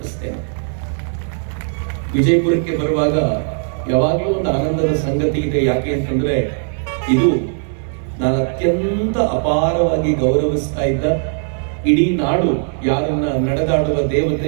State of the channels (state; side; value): silent; left; 64 dB below the other